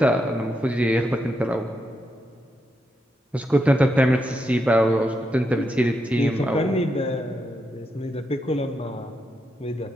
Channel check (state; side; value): normal; both; correlation 0.83